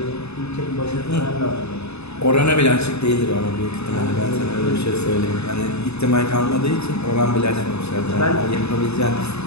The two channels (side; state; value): right; late; 0.80 ms